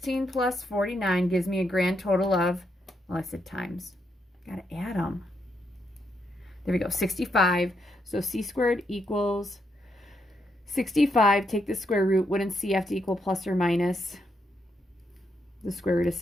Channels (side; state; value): both; normal; correlation 0.79